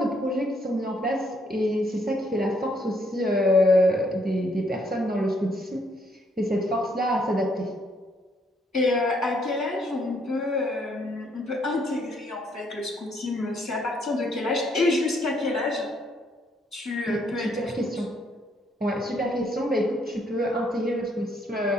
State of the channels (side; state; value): both; normal; correlation 0.70